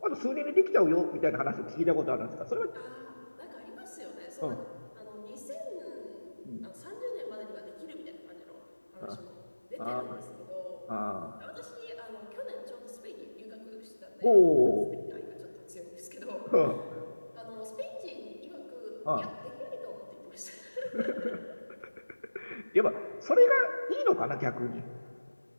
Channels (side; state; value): both; inverted; correlation -1.00